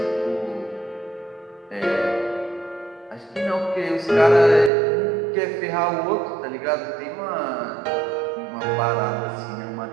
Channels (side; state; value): left; drops out; at 4.7 s